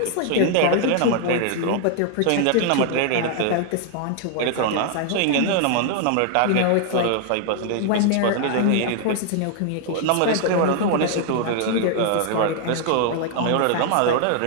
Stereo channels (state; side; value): different; both; correlation 0.00